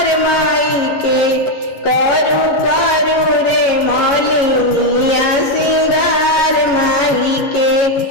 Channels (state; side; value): late; right; 11 ms